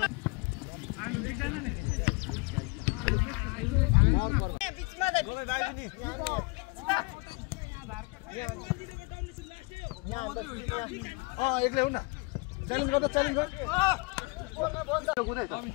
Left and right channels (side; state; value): right; quieter; 27.1 dB